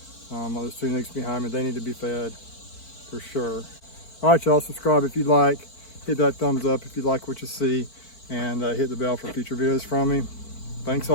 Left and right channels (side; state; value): right; late; 4.5 ms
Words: Those 2 nukes behind me, they need to be fed for sure. All right, y'all, subscribe if you'd like. Hit that thumbs up if you like what you see, and hit the bell for future videos from me. Thanks